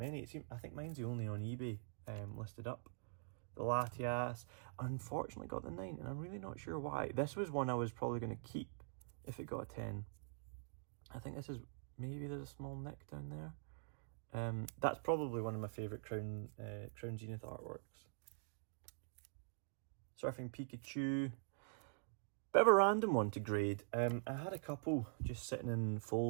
I think mine's the only on eBay listed up. The Latias, unfortunately, got the 9, and I'm really not sure why. This was one I was probably going to keep if it got a 10. I think this is, maybe there's a small nick down there. That's probably one of my favourite Crown Zenith artworks. Surfing Pikachu. Bit of a random one to grade. I had a couple just sitting in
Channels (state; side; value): silent; left; digital silence